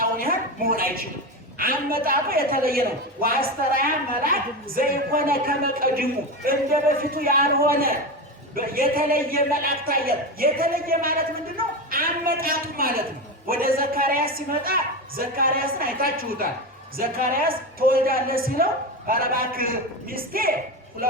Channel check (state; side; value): normal; both; correlation 0.19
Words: ያህል መሆን አይችልም። አመጣጡ የተለየ ነው። ወአስተርአያ መልአክ ዘይኮነ ከመ ቀድሙ፣ እንደ በፊቱ ያልሆነ የተለየ መልአክ ታየ። የተለየ ማለት ምንድን ነው? አመጣጡ ማለት ነው። ወደ ዘካርያስ ሲመጣ ዘካርያስን አይታችሁታል። ዘካርያስ ትወልዳለህ ሲለው ኧረ እባክህ ሚስቴ